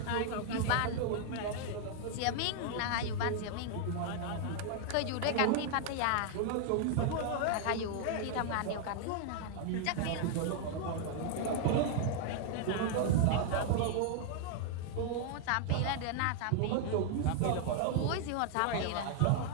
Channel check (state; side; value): different; both; correlation 0.00